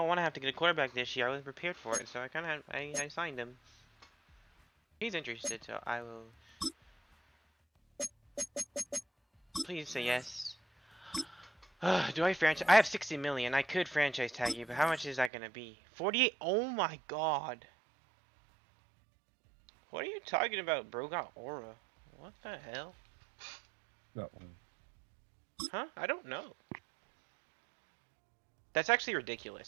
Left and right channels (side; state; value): left; drops out; at 15.3 s